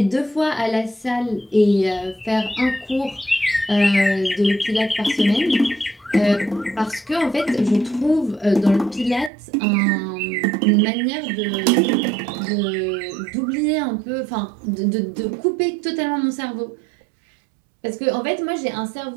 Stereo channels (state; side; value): drops out; left; at 9.3 s